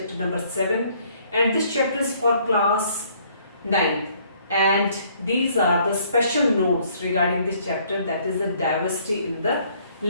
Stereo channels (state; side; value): inverted; both; correlation -0.63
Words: number 7, and this chapter is for class 9, and these are the special notes regarding this chapter, that is the diversity in the